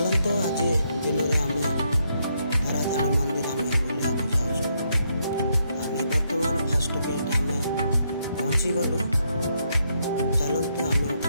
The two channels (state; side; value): inverted; both; correlation -0.77